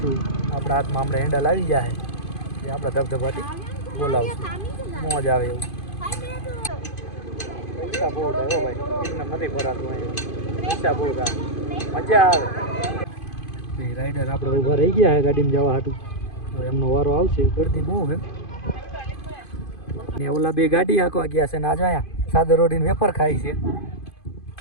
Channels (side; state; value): right; late; 2.5 ms